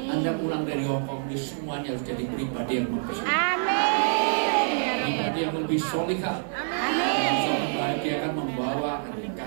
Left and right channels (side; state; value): left; silent; 61 dB below the other